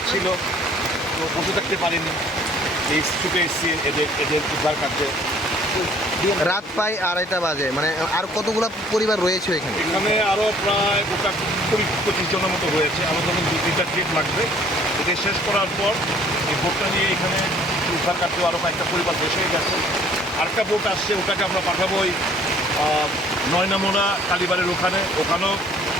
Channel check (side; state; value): both; normal; correlation 0.56